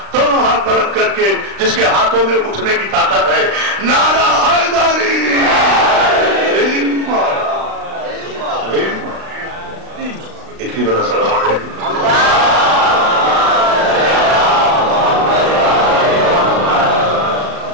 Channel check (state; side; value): late; left; 36 ms